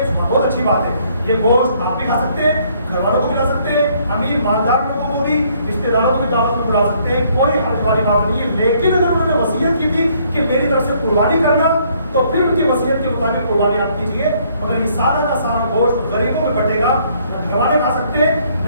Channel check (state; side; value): inverted; both; correlation -0.65